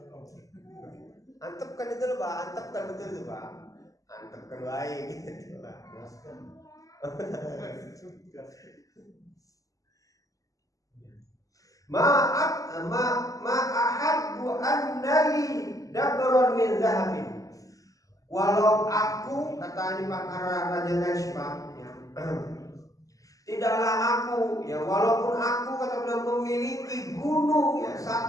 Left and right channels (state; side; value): late; right; 0.17 ms